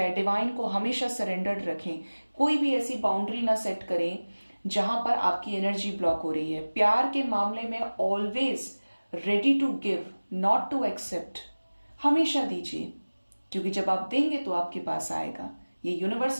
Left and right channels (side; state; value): both; inverted; correlation -1.00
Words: डिवाइन को हमेशा सरेंडर्ड रखें, कोई भी ऐसी बाउंड्री ना सेट करें जहां पर आपकी एनर्जी ब्लॉक हो रही है। प्यार के मामले में always ready to give, not to accept, हमेशा दीजिए, क्योंकि जब आप देंगे तो आपके पास आएगा। ये